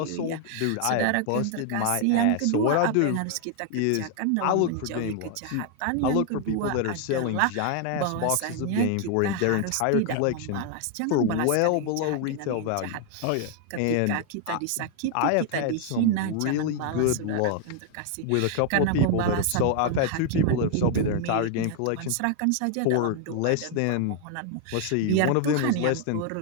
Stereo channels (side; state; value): both; different; correlation 0.00